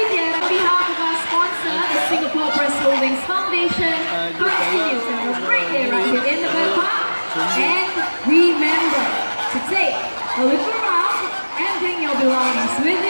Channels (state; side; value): inverted; both; correlation -1.00